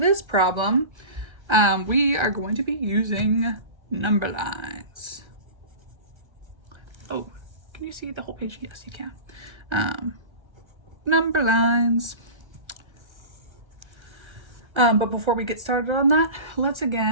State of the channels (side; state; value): left; late; 1.4 ms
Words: problem, we are going to be using number lines. Oh, can you see the whole page? Yes, you can. Number lines. But before we get started on that, let's